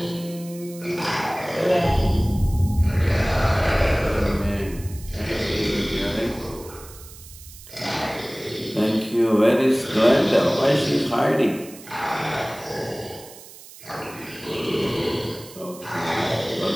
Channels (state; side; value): noise; right; hiss, 18 dB below the sound